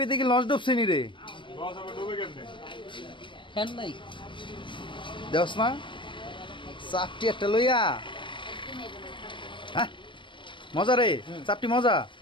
কি লঞ্চ ডুবছে নি রে বস আবার ডুবে কেমনে ফ্যান নাই দেওস না চাপটি একটা লইয়া হ্যাঁ মজা রে চাপটি মজা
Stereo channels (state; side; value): late; right; 0.24 ms